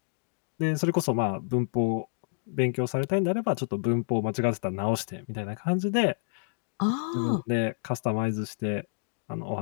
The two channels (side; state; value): right; silent; digital silence